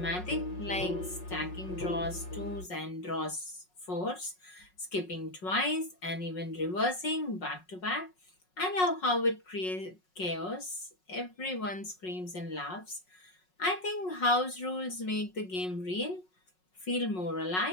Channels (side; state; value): right; late; 5.5 ms